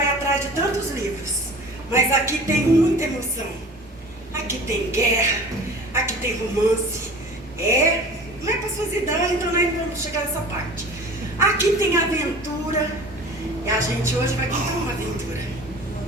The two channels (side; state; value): both; normal; correlation 0.41